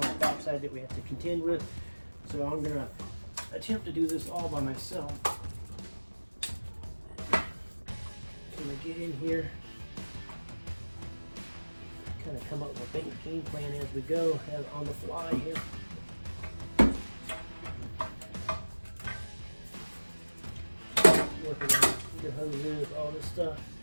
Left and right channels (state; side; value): inverted; both; correlation -1.00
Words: on the back side that we have to contend with. So I'm gonna attempt to do this all by myself. I'm gonna get in here, kind of come up with a game plan as we go, on the fly here. Working on your hoses, all this stuff.